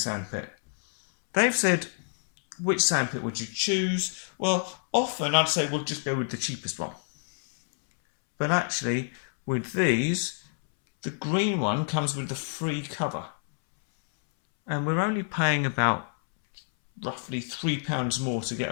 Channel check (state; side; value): silent; right; 60 dB below the other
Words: They've said, which sandpit would you choose? Well, often I'd say we'll just go with the cheapest one. But actually, with these, the green one comes with the free cover. And we're only paying about roughly £3 more to get